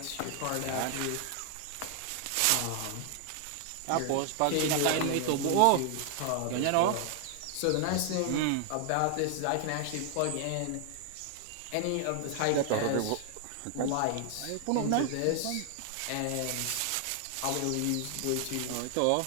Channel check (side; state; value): both; different; correlation 0.00